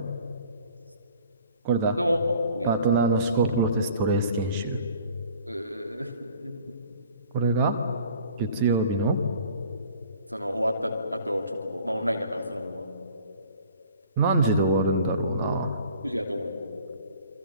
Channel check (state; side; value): inverted; both; correlation -0.50